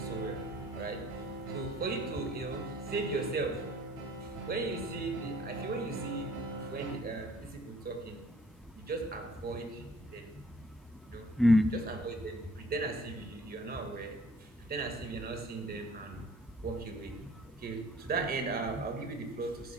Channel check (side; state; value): both; normal; correlation 0.56